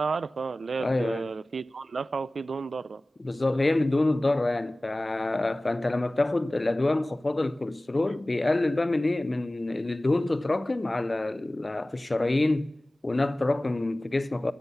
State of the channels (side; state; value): both; normal; correlation 0.98